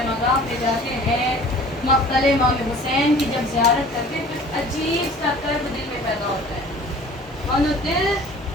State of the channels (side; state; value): both; normal; correlation 0.47